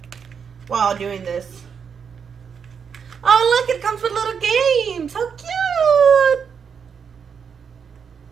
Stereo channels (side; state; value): left; quieter; 6.7 dB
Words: while doing this. Oh look, it comes with little games. How cute!